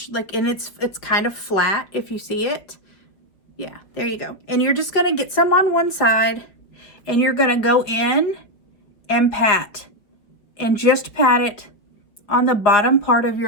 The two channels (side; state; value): right; late; 4.6 ms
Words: and it's kind of flat if you see it. Yeah, there you go. And you're just gonna get some on one side, and you're gonna go in and pat, and just pat it on the bottom part of